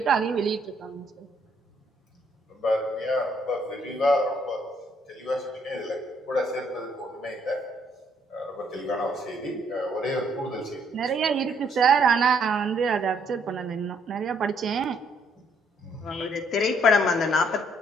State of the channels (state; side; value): normal; both; correlation 0.68